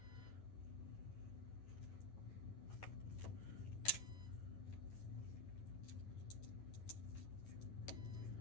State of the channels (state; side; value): late; right; 9.8 ms